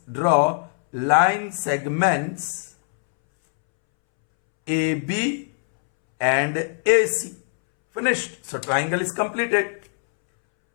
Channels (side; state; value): right; silent; 64 dB below the other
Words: AB and AC. Finished. So triangle is completed.